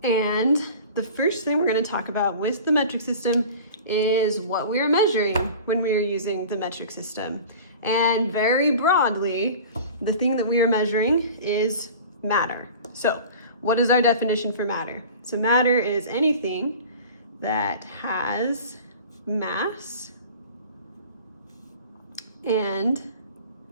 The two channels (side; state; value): both; inverted; correlation -0.39